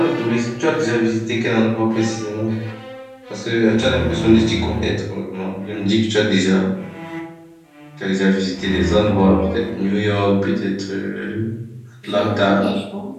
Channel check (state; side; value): identical; both; correlation 1.00